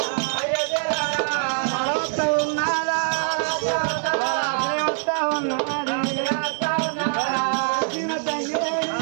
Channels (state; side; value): silent; left; 63 dB below the other